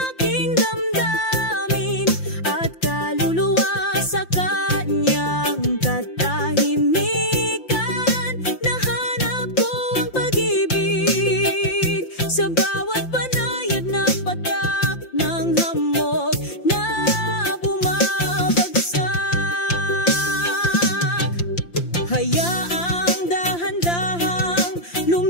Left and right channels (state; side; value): late; right; 5.8 ms